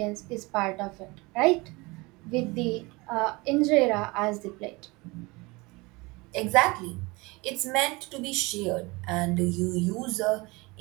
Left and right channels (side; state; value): left; quieter; 24.5 dB